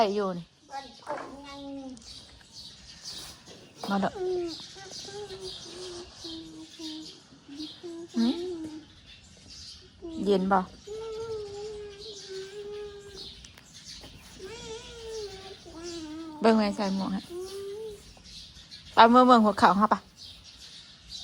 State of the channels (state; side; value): identical; both; correlation 1.00